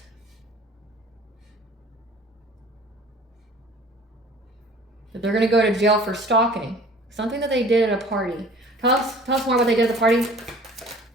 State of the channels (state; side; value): normal; both; correlation 0.48